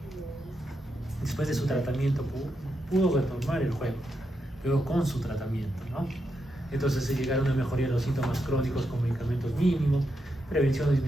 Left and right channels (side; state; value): both; normal; correlation 0.84